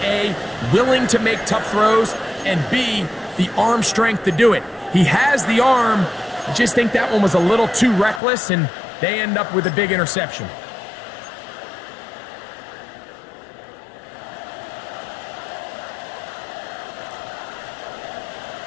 A, willing to make tough throws, and B, the arm strength to do it. He has the arm. I just think that one was a little too reckless, and they end up with a big interception.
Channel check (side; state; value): right; drops out; at 8.2 s